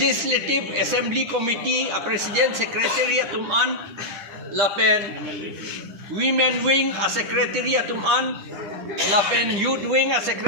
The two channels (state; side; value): late; left; 10 ms